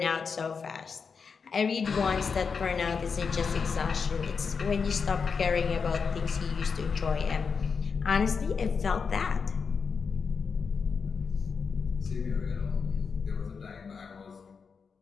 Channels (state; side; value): quieter; right; 5.6 dB